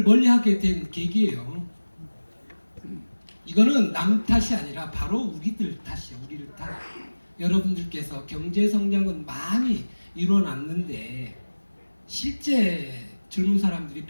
멀리하게 된 계기예요. 이거는 남 탓이 아니라 바로 우리들 탓이에요. 우리들 탓. 여러분들께서 경제 성장은 많이 이뤄놨는데 실제 젊은 사람들이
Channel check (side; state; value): both; inverted; correlation -1.00